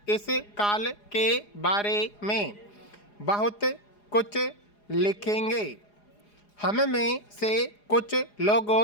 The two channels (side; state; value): right; late; 4.9 ms